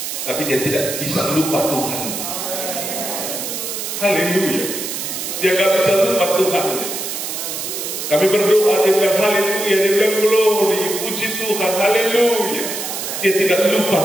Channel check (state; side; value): noise; right; hiss, 5 dB below the sound